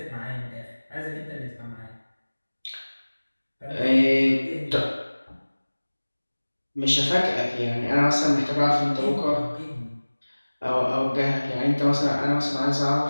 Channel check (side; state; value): both; inverted; correlation -1.00